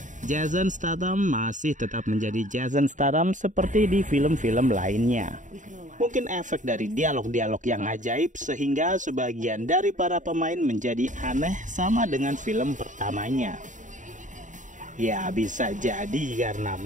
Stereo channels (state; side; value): late; left; 0.36 ms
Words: Jason Statham masih tetap menjadi Jason Statham seperti di film-film lainnya. Mungkin efek dari dialog-dialog yang ajaib sehingga sebagian dari para pemain menjadi aneh sama dengan film pertamanya. Ya bisa jadi karena